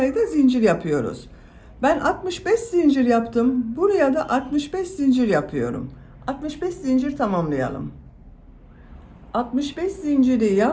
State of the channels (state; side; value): identical; both; correlation 1.00